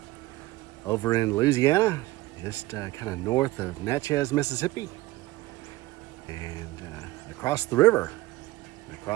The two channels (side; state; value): left; quieter; 18.5 dB